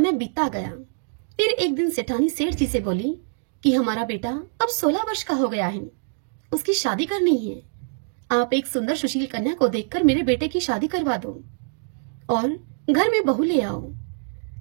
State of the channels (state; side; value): silent; left; digital silence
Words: बीतता गया। फिर एक दिन सेठानी सेठ जी से बोली कि हमारा बेटा अब 16 वर्ष का हो गया है, उसकी शादी करनी है। आप एक सुंदर सुशील कन्या को देखकर मेरे बेटे की शादी करवा दो और घर में बहू ले आओ।